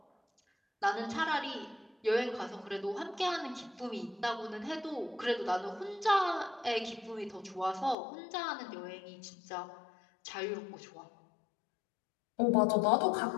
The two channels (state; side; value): drops out; right; at 8.0 s